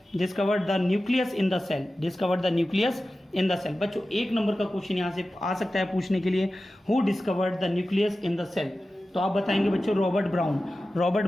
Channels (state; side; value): normal; both; correlation 0.94